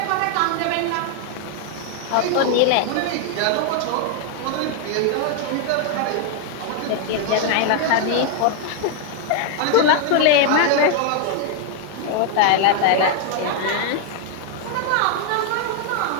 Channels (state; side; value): different; both; correlation 0.00